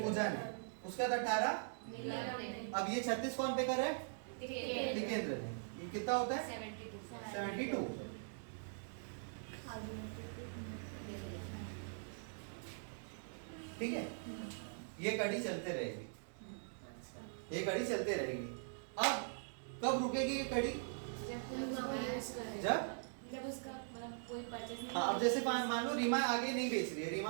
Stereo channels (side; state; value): left; silent; digital silence